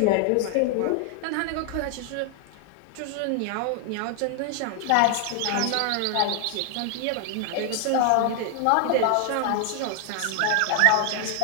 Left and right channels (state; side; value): different; both; correlation 0.00